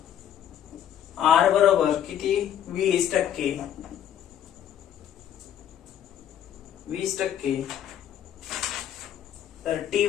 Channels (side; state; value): right; quieter; 10.1 dB